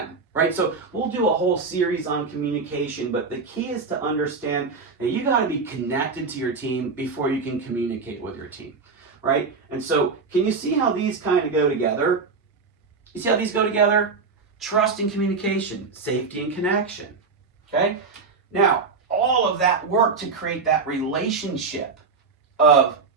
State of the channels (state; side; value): quieter; left; 4.7 dB